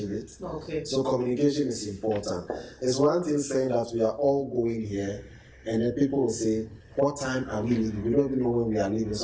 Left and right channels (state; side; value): identical; both; correlation 1.00